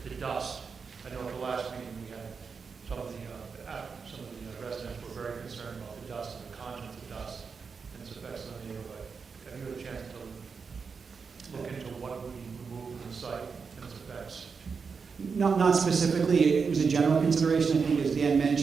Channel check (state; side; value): quieter; left; 5.4 dB